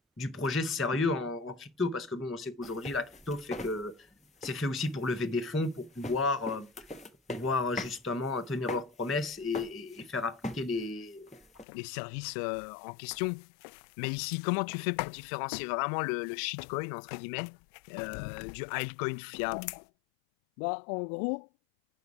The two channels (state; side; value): drops out; right; at 11.7 s